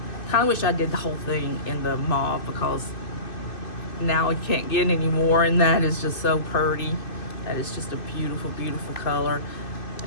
Kind of wish I did the whole thing in the mauve, because now I can't get any more, and that is just so pretty. That is just a beautiful, beautiful color.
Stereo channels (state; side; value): late; right; 2.5 ms